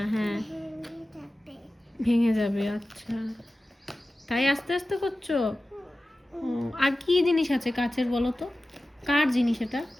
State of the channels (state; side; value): normal; both; correlation 0.95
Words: হ্যাঁ। ভেঙে যাবে, আচ্ছা। তাই আস্তে আস্তে করছো? ও, আর কি জিনিস আছে কাচের বলো তো? কার জিনিস এটা?